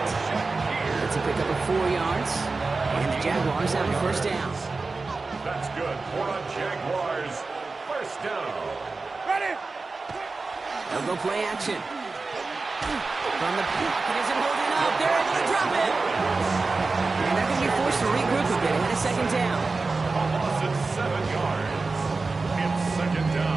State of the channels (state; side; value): quieter; left; 3.9 dB